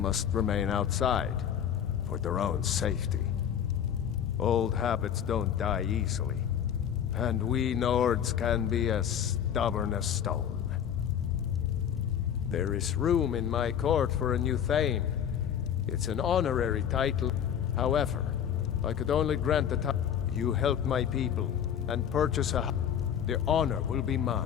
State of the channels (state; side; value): quieter; right; 9.1 dB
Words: remain outside, for their own safety. Old habits don't die easily. And we Nords can be as stubborn as stone. There is room in my court for a new Thane. It's an honorary title. However, I could only grant the title. You help my people and purchase a house. The honor will be